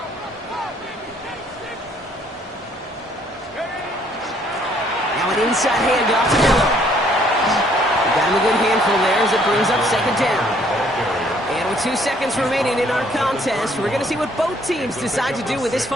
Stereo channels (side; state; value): both; normal; correlation 0.64